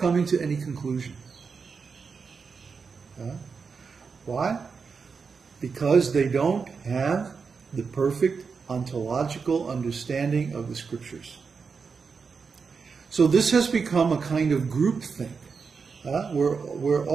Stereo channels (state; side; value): quieter; left; 5.4 dB